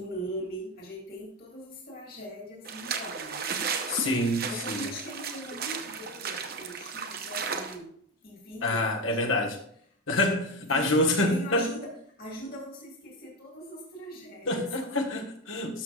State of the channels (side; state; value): both; normal; correlation 0.17